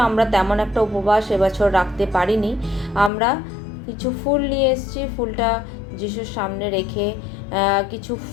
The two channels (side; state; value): right; drops out; at 3.1 s